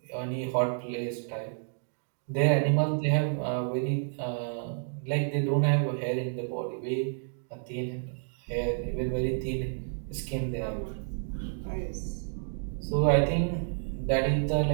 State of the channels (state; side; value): silent; left; digital silence